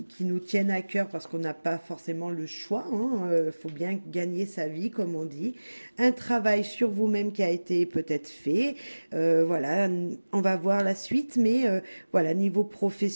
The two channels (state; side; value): inverted; both; correlation -1.00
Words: nous tiennent à cœur parce qu'on n'a pas forcément le choix. Faut bien gagner sa vie, comme on dit. Un travail sur vous-même qui a été peut-être fait. Voilà, on va voir la suite, mais voilà, niveau